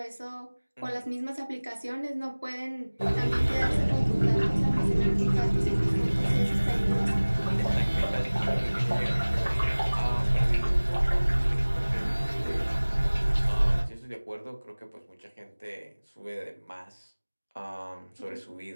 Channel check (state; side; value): inverted; both; correlation -1.00